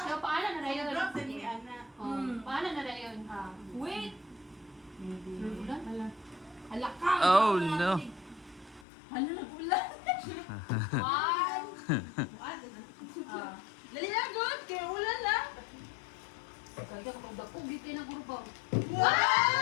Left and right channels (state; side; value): drops out; right; at 8.8 s